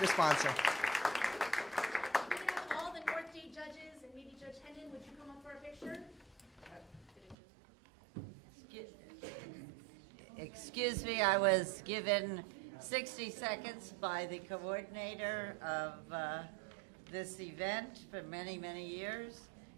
sponsor. All the North Day judges, and maybe Judge Hendon, would you come up for a picture? Excuse me, I was given 60 seconds by the coordinator of this event for many, many years,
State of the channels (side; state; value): left; drops out; at 7.4 s